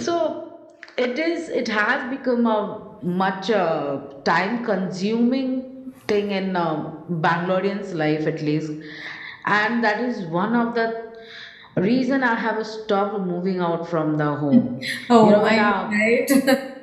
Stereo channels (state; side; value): identical; both; correlation 1.00